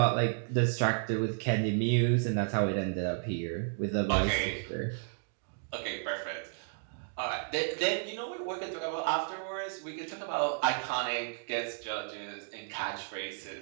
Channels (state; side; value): silent; left; digital silence